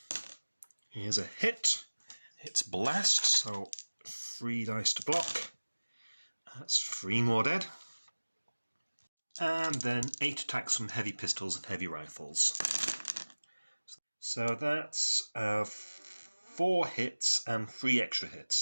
Here's a hit. It's blast, so 3 dice to block. That's 3 more dead. And then 8 attacks from heavy pistols and heavy rifles. So that's 4 hits and 3 extra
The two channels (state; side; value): inverted; both; correlation -1.00